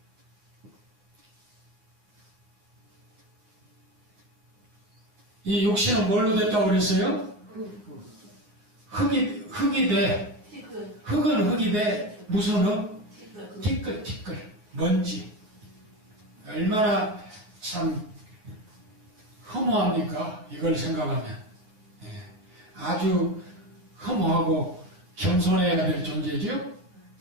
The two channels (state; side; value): late; left; 9.5 ms